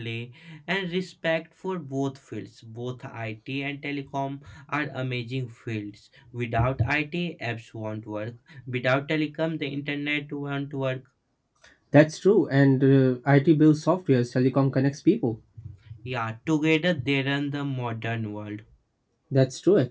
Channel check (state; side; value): identical; both; correlation 1.00